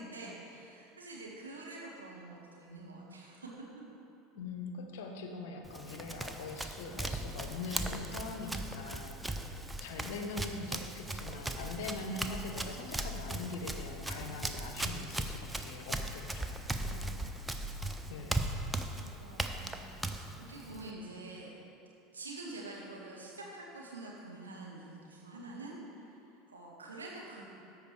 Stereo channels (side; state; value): both; normal; correlation 0.52